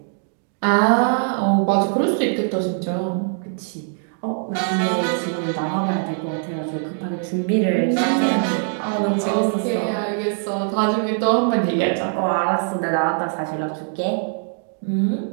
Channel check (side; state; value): left; silent; 64 dB below the other